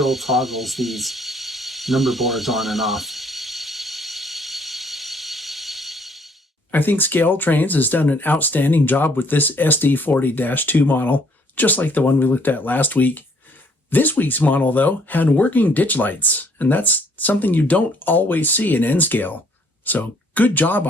toggles these number boards on and off. I think ScaleTrains has done an outstanding job with this SD40-2 model, just like the one we looked at last week. This week's model, though, had working ditch lights, and that's something you don't always see in N-Scale. So good job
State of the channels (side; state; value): both; normal; correlation 0.63